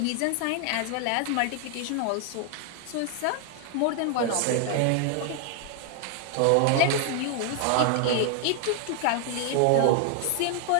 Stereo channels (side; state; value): both; different; correlation 0.00